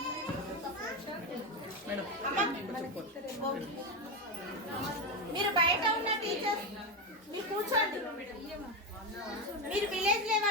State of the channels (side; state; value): both; normal; correlation 0.12